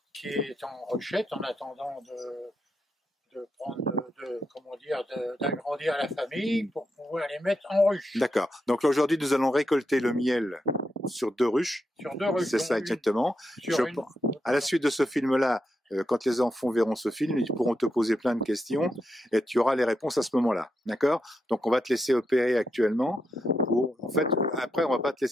qui est en ruchette en attendant d'agrandir la famille pour pouvoir les mettre en ruche. D'accord. Donc aujourd'hui, nous allons récolter le miel sur 2 ruches. Sur 2 ruches. C'est ça exactement. À la suite de ce film-là, quand les enfants verront ce film, ils pourront te poser plein de questions et tu auras les réponses à ce moment-là. D'accord? Donc on va te laisser opérer actuellement. En fait, après, on va pas te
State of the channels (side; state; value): both; normal; correlation 0.84